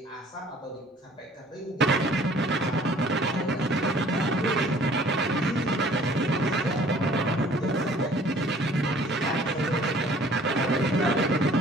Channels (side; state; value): both; normal; correlation 0.53